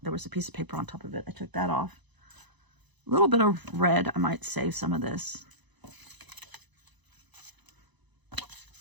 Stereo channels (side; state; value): left; late; 1.0 ms